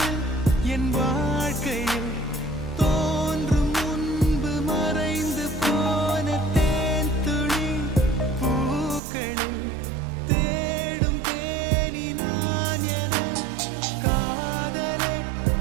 என் வாழ்க்கையில் தோன்றும் முன்பு மறைந்து போன தேன் துளி பூக்களில் தேடும் தேனி நான் என காதலே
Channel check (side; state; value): left; drops out; at 9.0 s